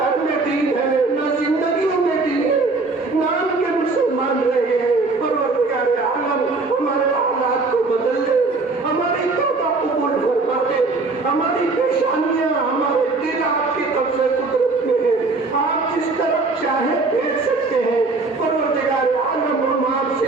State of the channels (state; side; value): quieter; left; 3.7 dB